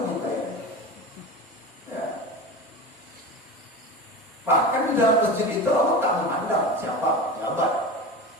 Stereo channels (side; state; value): both; normal; correlation 0.28